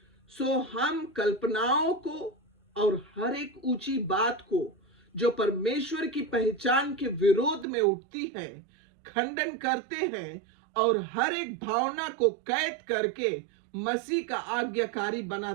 सो हम कल्पनाओं को और हर एक ऊंची बात को जो परमेश्वर की पहचान के विरोध में उठती है खंडन करते हैं और हर एक भावना को कैद करके मसीह का आज्ञाकारी बना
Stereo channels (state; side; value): drops out; left; at 7.7 s